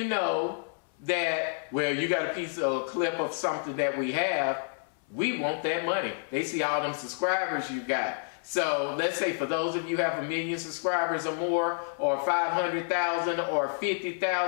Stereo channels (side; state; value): right; silent; 58 dB below the other